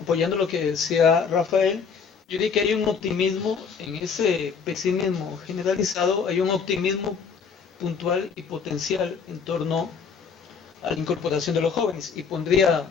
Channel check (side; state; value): right; quieter; 5.9 dB